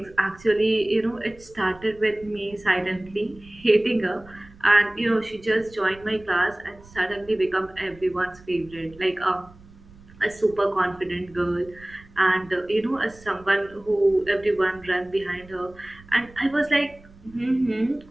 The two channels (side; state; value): right; noise; rumble, 23 dB below the sound